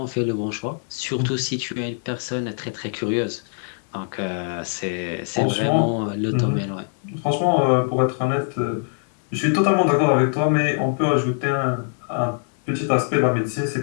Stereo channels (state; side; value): silent; right; 57 dB below the other